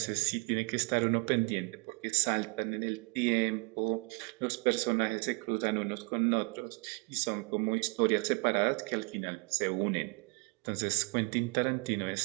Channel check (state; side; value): quieter; left; 30.5 dB